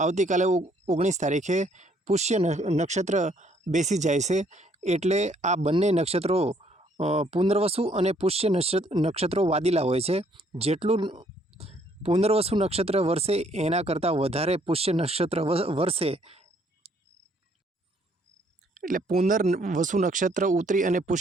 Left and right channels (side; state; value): both; normal; correlation 0.65